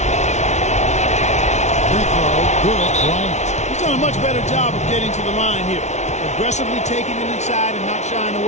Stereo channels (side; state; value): right; late; 0.33 ms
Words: He's done a much better job of getting to the line here. Aggressively taking it inside and not shying